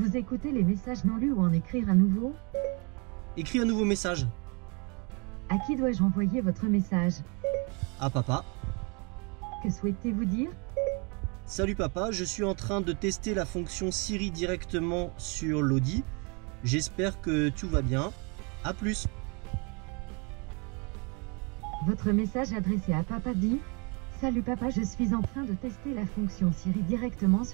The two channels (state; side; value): quieter; left; 32.2 dB